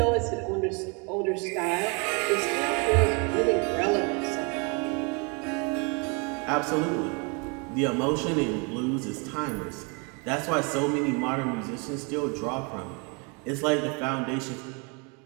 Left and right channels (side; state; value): left; quieter; 33.0 dB